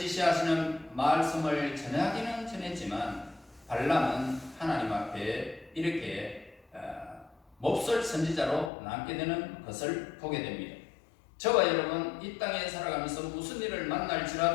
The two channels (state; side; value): drops out; right; at 8.7 s